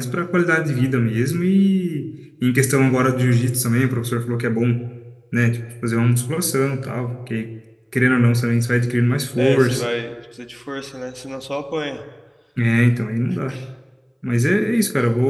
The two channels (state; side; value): identical; both; correlation 1.00